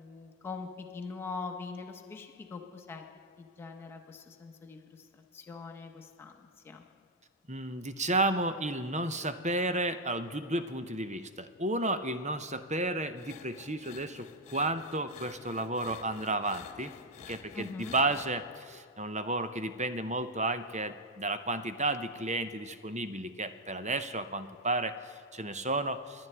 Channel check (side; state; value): both; normal; correlation 0.01